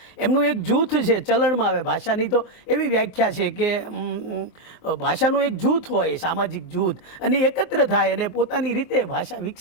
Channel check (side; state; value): right; late; 23 ms